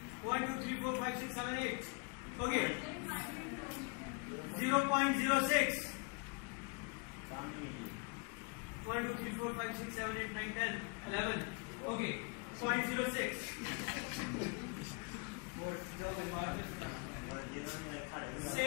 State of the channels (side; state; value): right; quieter; 32.4 dB